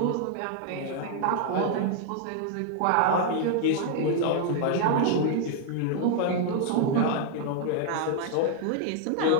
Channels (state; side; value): different; both; correlation 0.00